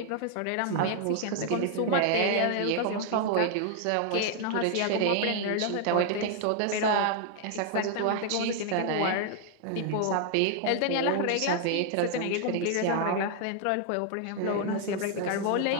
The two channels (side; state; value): both; different; correlation 0.00